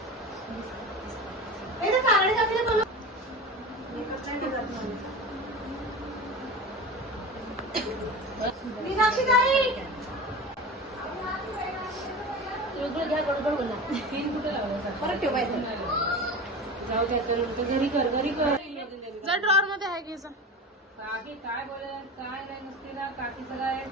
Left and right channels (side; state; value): both; normal; correlation 0.30